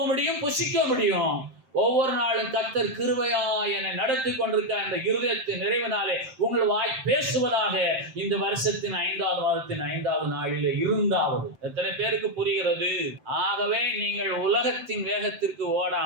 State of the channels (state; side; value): late; left; 7.7 ms